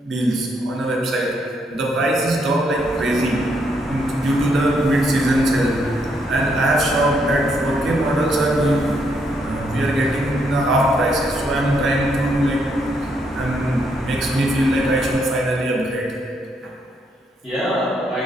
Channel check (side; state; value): both; normal; correlation 0.75